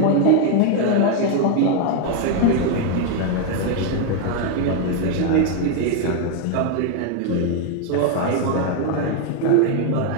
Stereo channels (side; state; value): both; different; correlation 0.01